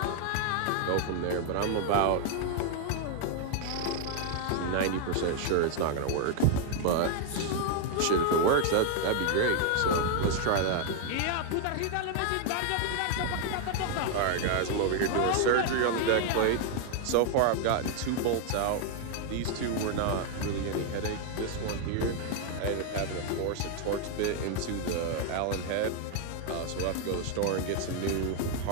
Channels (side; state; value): both; different; correlation 0.00